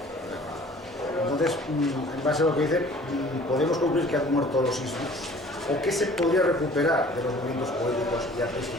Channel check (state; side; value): normal; both; correlation 0.49